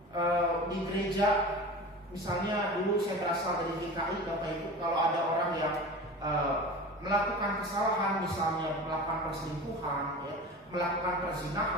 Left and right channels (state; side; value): normal; both; correlation 0.34